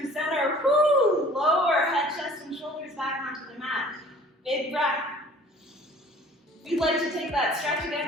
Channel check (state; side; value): normal; both; correlation 0.49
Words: center. Woo! Lower head, chest, and shoulders back onto the mat. Big breath. If you'd like to take that stretch